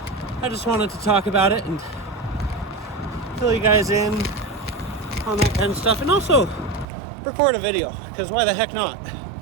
I just wanted to talk about it and fill you guys in on that kind of stuff, and also record a video, because why the heck not?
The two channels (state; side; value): drops out; left; at 6.9 s